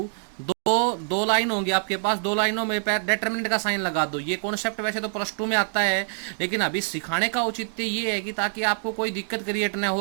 दो लाइन होंगी आपके पास, दो लाइनों में डिटरमिनेंट का साइन लगा दो। ये कॉन्सेप्ट वैसे तो +2 में आता है, लेकिन अभी सिखाने का औचित्य ये है कि ताकि आपको कोई दिक्कत क्रिएट ना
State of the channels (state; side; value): silent; left; digital silence